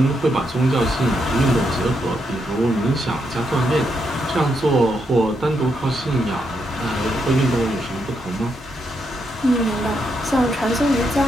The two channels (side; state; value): both; normal; correlation 0.80